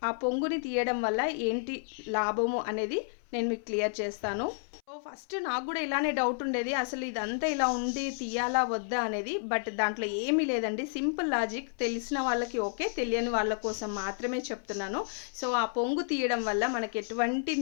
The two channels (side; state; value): right; silent; 57 dB below the other